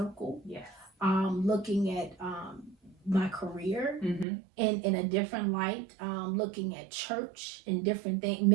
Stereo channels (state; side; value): drops out; left; at 4.2 s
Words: Yeah. Looking at my career in a different light, looking at church in different things,